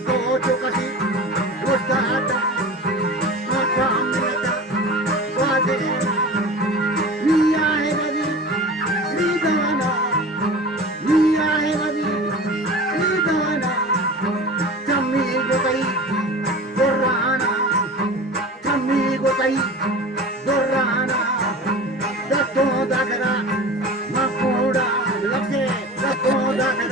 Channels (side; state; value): both; normal; correlation 0.35